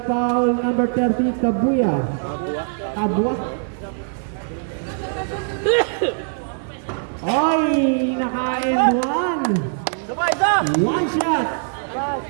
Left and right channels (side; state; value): left; silent; digital silence